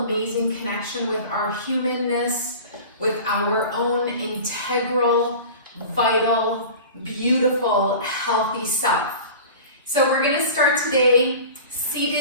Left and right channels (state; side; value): inverted; both; correlation -0.37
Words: connection with our humanness, with our own integral, vital, beautiful, healthy self. So we're going to start today